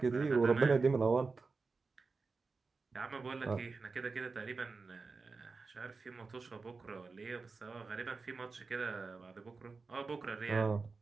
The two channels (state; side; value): quieter; left; 4.3 dB